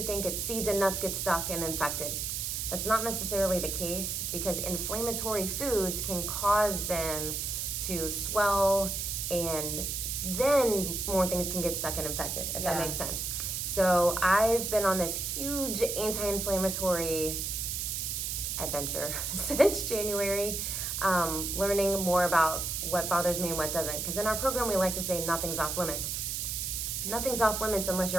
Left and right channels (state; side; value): noise; right; hiss, 2 dB below the sound